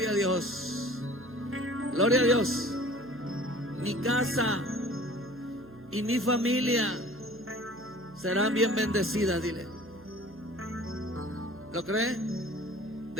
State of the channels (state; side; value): noise; right; hum, 21 dB below the sound